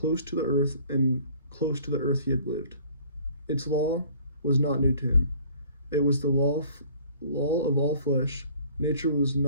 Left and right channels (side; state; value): both; inverted; correlation -0.53